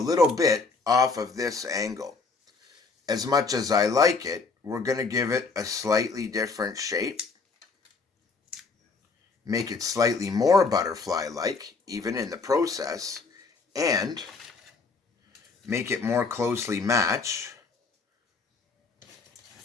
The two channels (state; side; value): quieter; right; 4.3 dB